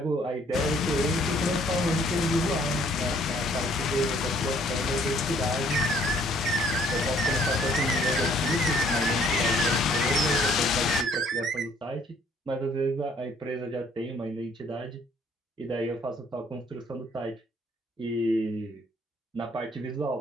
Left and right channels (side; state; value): both; normal; correlation 0.62